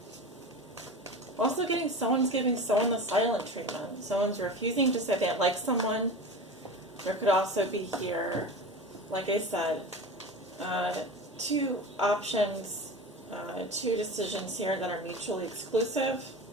Also someone's giving someone the silent treatment. Someone's refusing to say they like someone. There could also be here, like I said, two options, two decisions here that are mutually exclusive.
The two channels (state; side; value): normal; both; correlation 0.30